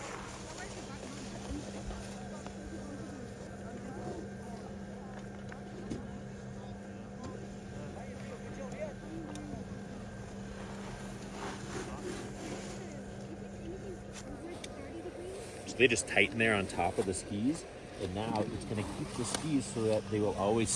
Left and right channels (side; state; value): both; identical; correlation 1.00